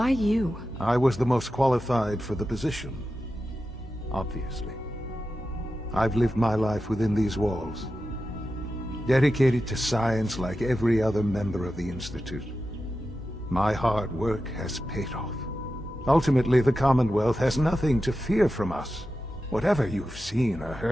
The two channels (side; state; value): both; normal; correlation 0.91